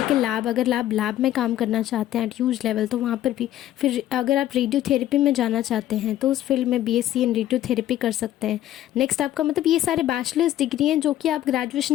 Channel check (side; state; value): right; quieter; 12.9 dB